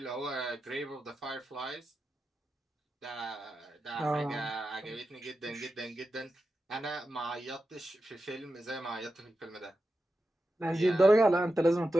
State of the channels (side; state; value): both; normal; correlation 0.91